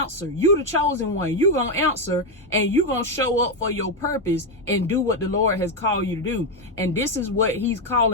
You the chosen one. You gonna answer, and you gonna show up for your purpose and do what the Lord has called you to do. And this is what he's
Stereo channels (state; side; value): normal; both; correlation 0.06